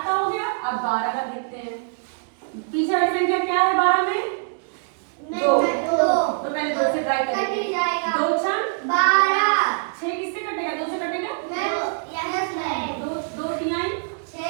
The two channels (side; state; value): left; silent; digital silence